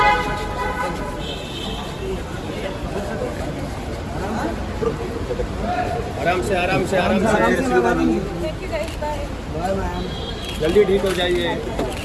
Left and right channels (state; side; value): identical; both; correlation 1.00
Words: आराम से जल्दी ठीक हो जाइए,